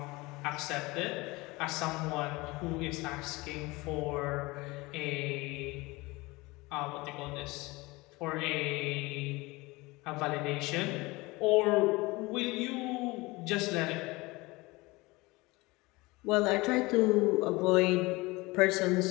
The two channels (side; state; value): right; quieter; 22.7 dB